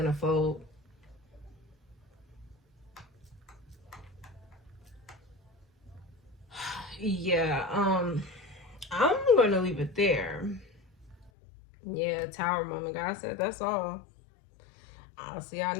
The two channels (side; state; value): right; drops out; at 11.3 s